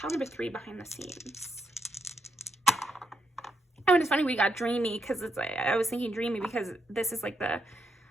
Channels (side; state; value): both; normal; correlation 0.81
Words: number 3 behind the scenes? Oh, and it's funny we got dreamy because it's like, I was thinking dreamy because this is like the